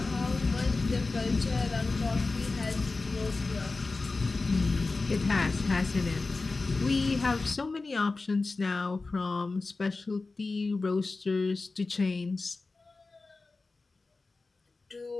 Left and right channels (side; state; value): right; quieter; 3.7 dB